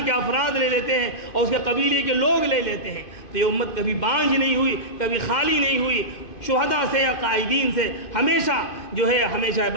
کے افراد لے لیتے ہیں، اور اس کے قبیلے کے لوگ لے لیتے ہیں۔ تو یہ امت کبھی بانجھ نہیں ہوئی، کبھی خالی نہیں ہوئی، شہداء سے یا قائدین سے ہمیشہ جو ہے ہمیشہ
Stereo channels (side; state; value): right; late; 2.1 ms